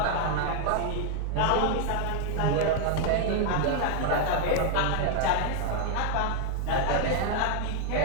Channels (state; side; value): different; both; correlation 0.00